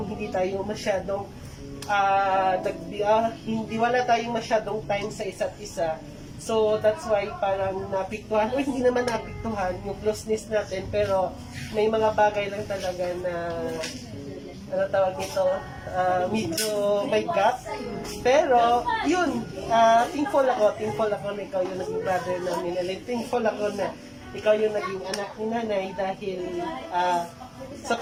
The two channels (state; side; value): identical; both; correlation 1.00